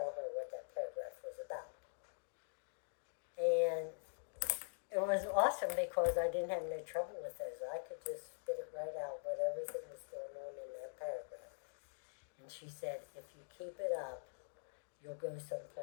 her what that paragraph was about. And laughing because I didn't have no trouble with those. I could just spit it right out what everything was going on in that paragraph. And she said, if you keep it up, you'll go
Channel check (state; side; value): silent; right; digital silence